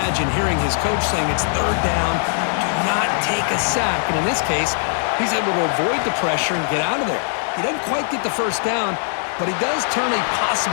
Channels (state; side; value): silent; right; digital silence